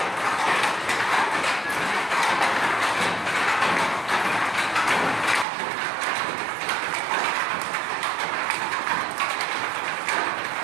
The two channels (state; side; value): drops out; left; at 5.5 s